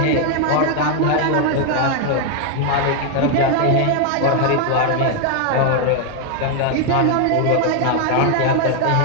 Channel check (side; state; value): both; different; correlation 0.00